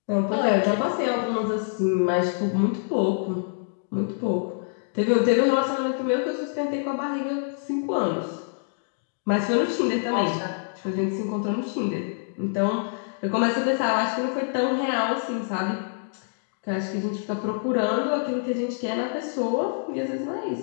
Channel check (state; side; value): silent; right; digital silence